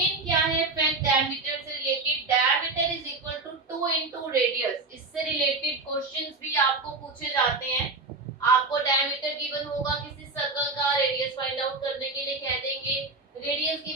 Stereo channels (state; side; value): quieter; left; 3.5 dB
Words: क्या है फैक्ट डायमीटर से related? Diameter is equal to 2 into radius. इससे रिलेटेड क्वेश्चंस भी आपको पूछे जाते हैं। आपको डायमीटर गिवन होगा किसी सर्कल का, रेडियस फाइंड आउट करने के लिए कह देंगे। रेडियस